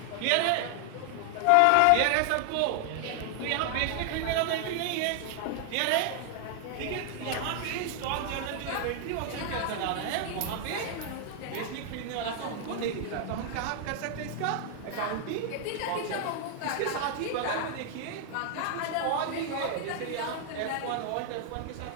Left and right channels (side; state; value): both; different; correlation 0.00